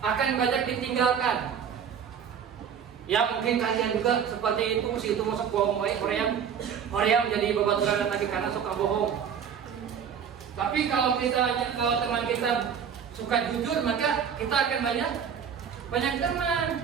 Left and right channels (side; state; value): left; quieter; 7.6 dB